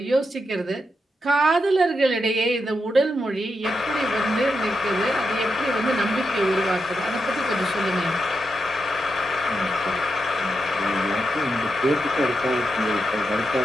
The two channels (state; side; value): normal; both; correlation 0.85